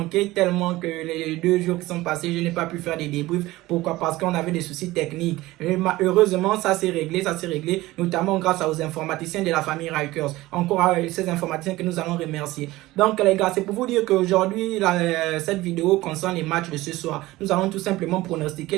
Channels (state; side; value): quieter; left; 18.2 dB